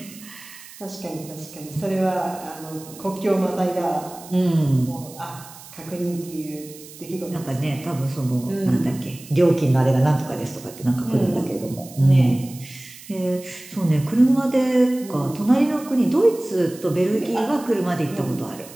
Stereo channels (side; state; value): right; noise; hiss, 18 dB below the sound